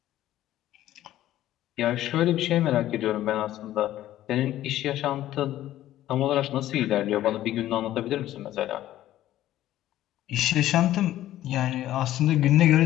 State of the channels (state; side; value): quieter; right; 13.6 dB